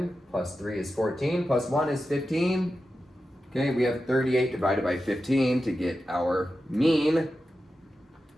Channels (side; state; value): both; normal; correlation 0.91